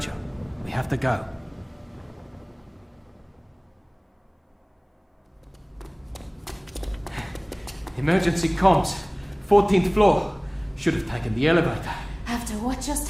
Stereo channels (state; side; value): identical; both; correlation 1.00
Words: We have to go. Emergency comms. 14th floor. Should have taken the elevator. After what just